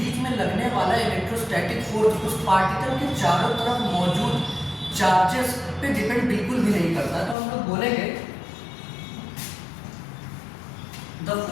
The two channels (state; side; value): drops out; right; at 7.4 s